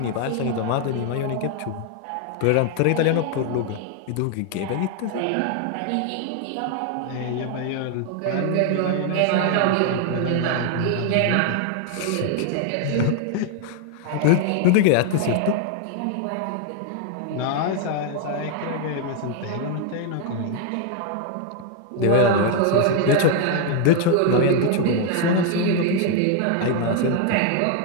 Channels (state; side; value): different; both; correlation 0.00